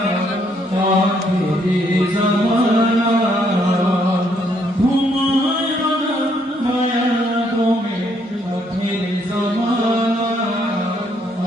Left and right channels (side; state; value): both; normal; correlation 0.70